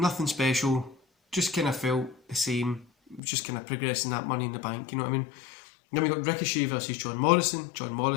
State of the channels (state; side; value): drops out; right; at 3.2 s